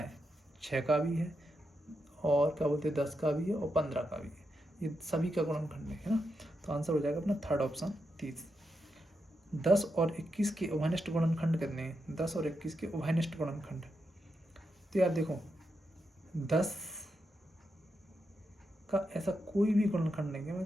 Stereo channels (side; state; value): both; normal; correlation 0.85